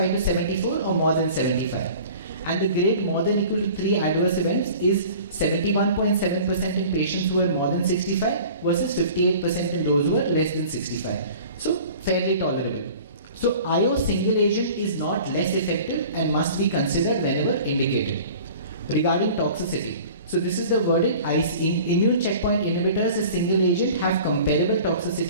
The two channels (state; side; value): inverted; both; correlation -0.44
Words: to 74 or more than 75. And the grade more than equal to 3 adverse events is 71.7% in patients who are more than 65 versus 58% in those who are less than 65. So fairly tolerable. So IO single agent is not less effective and must be considered whenever indicated. Regarding toxicity, so this is the verdict. Immune checkpoint inhibitors as single agent have comparable